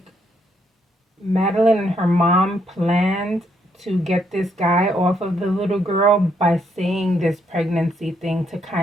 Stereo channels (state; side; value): normal; both; correlation 0.73